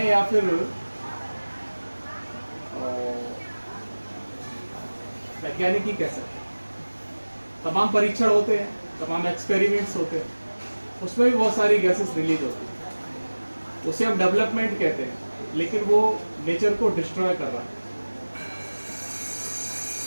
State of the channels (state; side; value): inverted; both; correlation -1.00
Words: या फिर वैज्ञानिक ही कह सकते हैं। तमाम परीक्षण होते हैं, तमाम एक्सपेरिमेंट्स होते हैं, उसमें भी बहुत सारी गैसेस रिलीज होती है। उसे हम डेवलपमेंट कहते हैं, लेकिन वो नेचर को डिस्ट्रॉय कर रहा है।